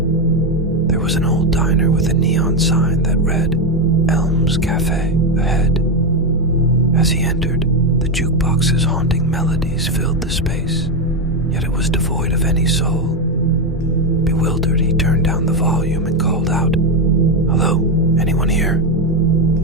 There was an old diner with a neon sign that read, Elm's Cafe ahead. As he entered, the jukebox's haunting melodies filled the space, yet it was devoid of any soul. Bewildered, he turned down the volume and called out, "Hello, anyone here?"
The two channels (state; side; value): normal; both; correlation 0.09